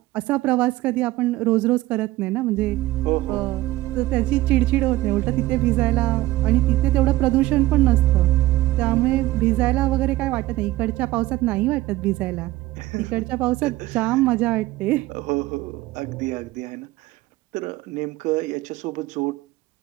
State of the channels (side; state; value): left; quieter; 17.3 dB